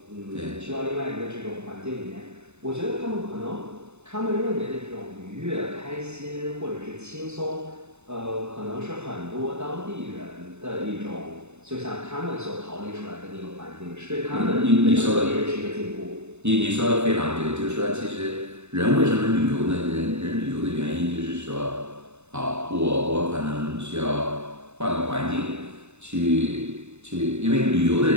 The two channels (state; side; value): late; left; 0.82 ms